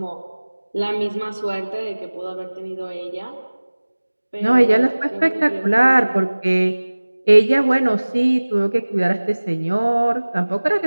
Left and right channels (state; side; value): inverted; both; correlation -1.00